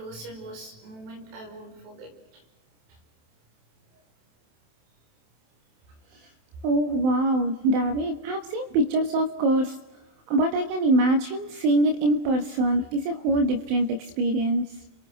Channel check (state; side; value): late; left; 27 ms